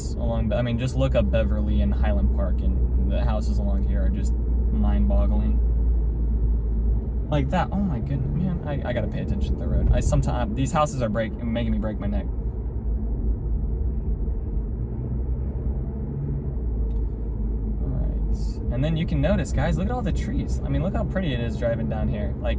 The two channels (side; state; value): both; identical; correlation 1.00